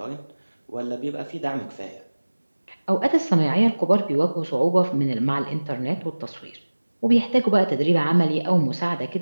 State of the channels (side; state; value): both; inverted; correlation -1.00